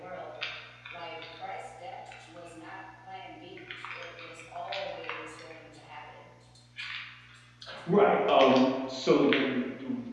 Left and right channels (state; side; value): identical; both; correlation 1.00